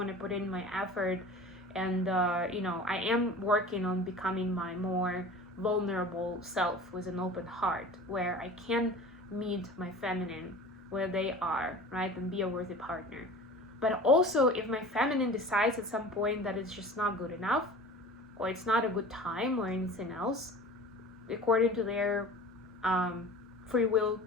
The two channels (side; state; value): both; normal; correlation 0.40